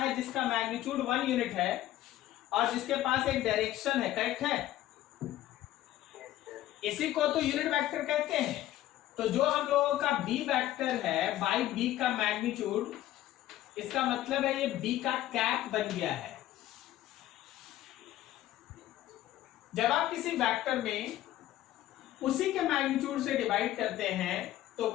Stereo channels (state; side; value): quieter; right; 13.9 dB